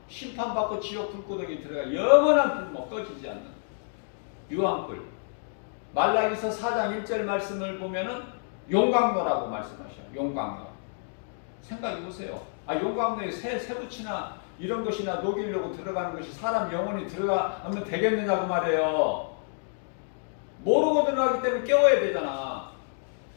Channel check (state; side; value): silent; right; digital silence